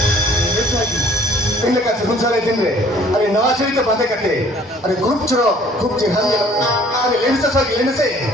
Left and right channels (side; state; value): both; normal; correlation 0.56